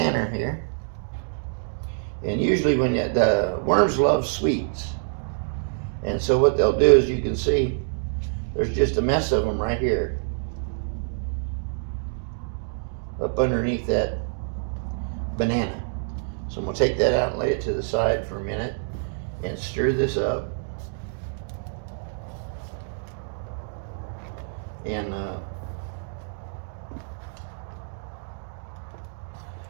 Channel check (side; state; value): left; silent; digital silence